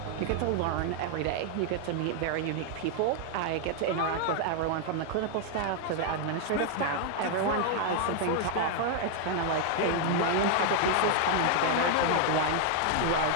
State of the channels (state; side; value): different; both; correlation 0.00